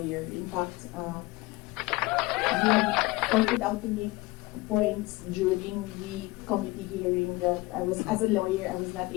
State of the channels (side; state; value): right; quieter; 21.6 dB